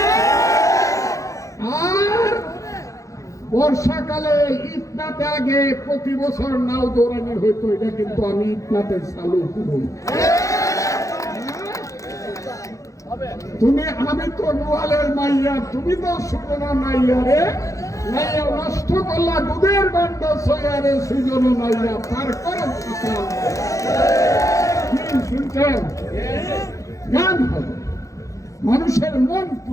আর বর্ষাকালে ইটনাতে আগে প্রতি বছর নাও দৌড়ানি হইতো, এটা কিন্তু আমি ইটনাতে চালু করব। তুমি, আমি তো নোয়ালের মাইয়া, তুমি তো সুজনা নাইয়া রে, নাইয়া নষ্ট করলা দুধের বান্ড সয়ারে, সুজন নাইয়া পার করো। শুনছেন? গান হবে, মানুষের মন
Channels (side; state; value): right; late; 0.16 ms